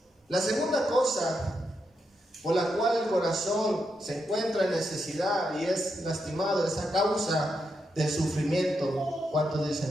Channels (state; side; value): normal; both; correlation 0.83